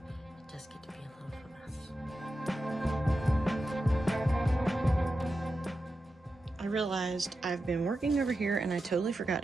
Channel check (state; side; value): normal; both; correlation 0.90